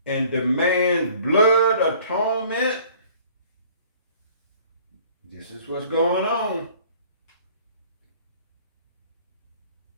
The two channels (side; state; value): both; inverted; correlation -0.53